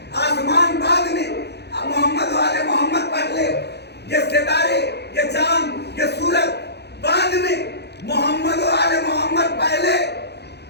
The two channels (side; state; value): right; late; 0.48 ms